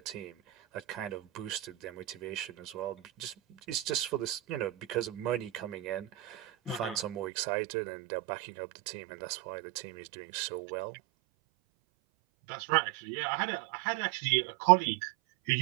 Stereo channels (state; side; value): drops out; left; at 7.3 s